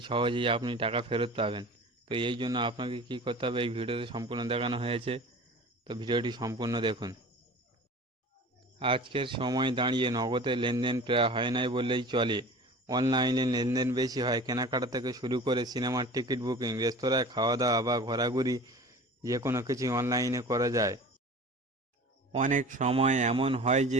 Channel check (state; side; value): normal; both; correlation 0.40